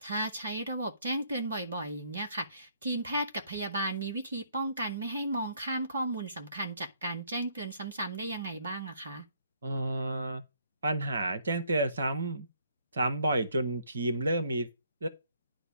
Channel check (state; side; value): inverted; both; correlation -0.66